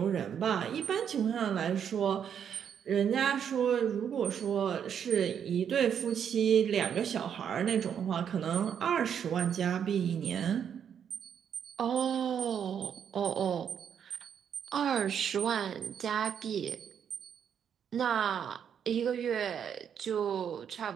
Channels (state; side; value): quieter; left; 8.2 dB